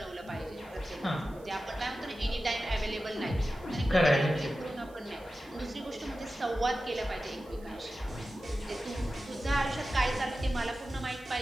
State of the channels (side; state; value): right; noise; hiss, 27 dB below the sound